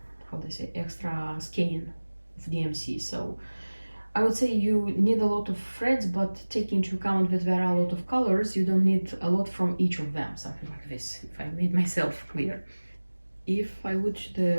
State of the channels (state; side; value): inverted; both; correlation -1.00